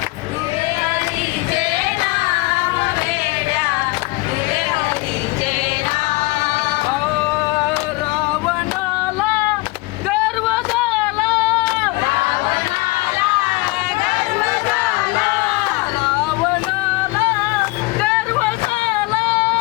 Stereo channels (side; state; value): right; quieter; 22.8 dB